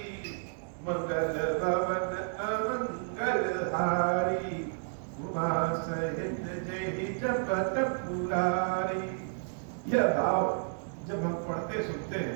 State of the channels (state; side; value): silent; left; digital silence